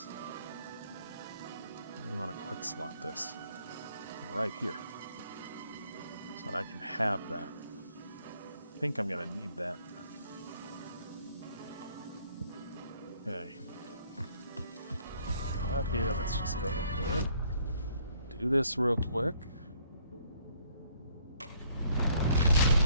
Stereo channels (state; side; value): inverted; both; correlation -0.64